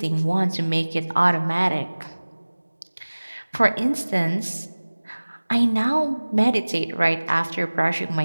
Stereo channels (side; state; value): both; inverted; correlation -1.00